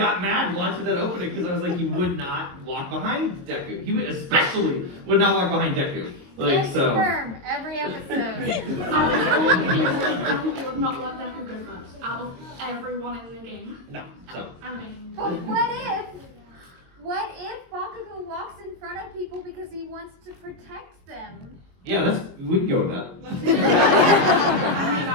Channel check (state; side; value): late; left; 22 ms